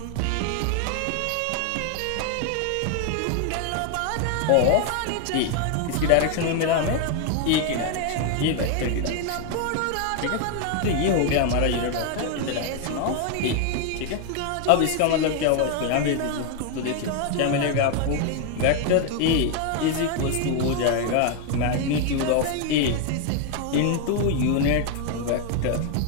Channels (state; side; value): different; both; correlation 0.01